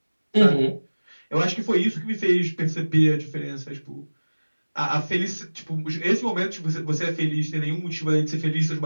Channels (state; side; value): inverted; both; correlation -1.00